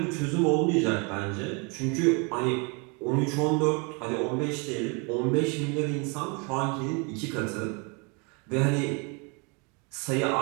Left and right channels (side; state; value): left; quieter; 32.5 dB